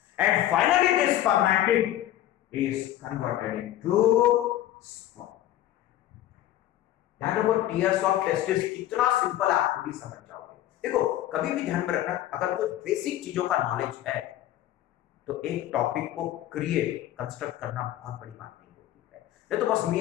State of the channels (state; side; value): quieter; right; 13.2 dB